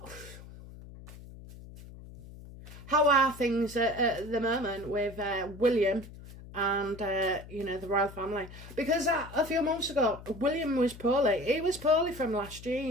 how are things at the moment with William and, you know, the royal family? Because a few months ago, William was poorly. He was poorly from last year,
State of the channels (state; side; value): noise; left; hum, 16 dB below the sound